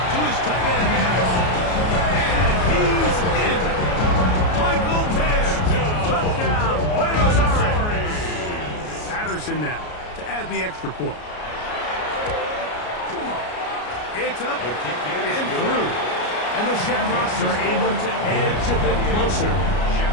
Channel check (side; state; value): right; late; 33 ms